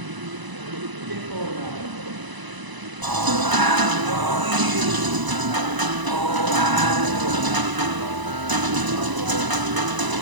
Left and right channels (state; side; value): late; left; 1.0 ms